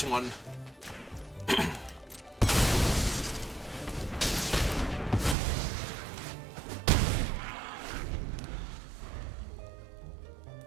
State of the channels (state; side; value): drops out; left; at 5.4 s